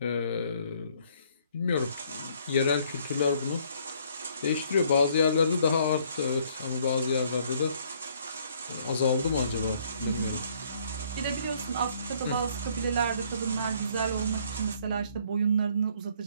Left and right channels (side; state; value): both; inverted; correlation -0.63